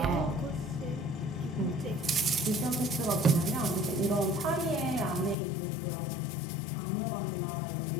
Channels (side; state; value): right; drops out; at 5.4 s